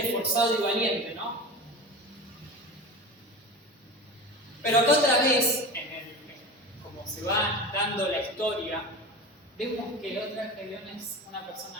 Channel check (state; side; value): normal; both; correlation 0.30